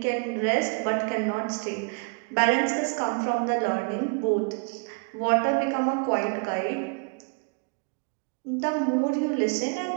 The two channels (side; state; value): left; quieter; 36.5 dB